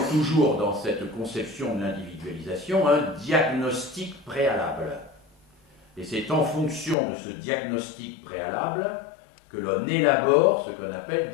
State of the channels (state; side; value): drops out; right; at 7.0 s